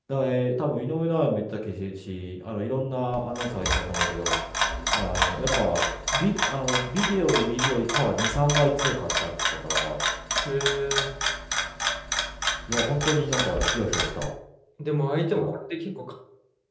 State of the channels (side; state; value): both; identical; correlation 1.00